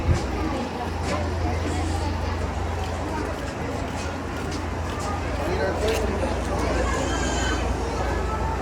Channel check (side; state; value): both; identical; correlation 1.00